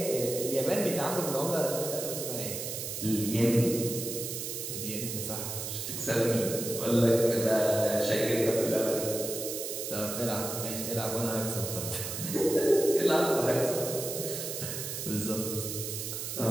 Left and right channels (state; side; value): noise; right; hiss, 5 dB below the sound